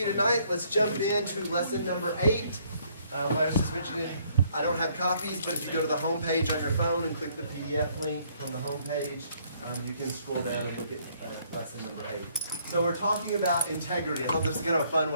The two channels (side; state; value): both; inverted; correlation -0.65